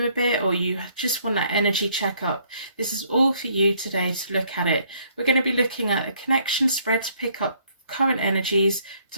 a bit, or you just want that energy checkup. This is all for you today to look at it. We're going to be looking at a connection spread to pick up current energies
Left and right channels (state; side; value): inverted; both; correlation -0.65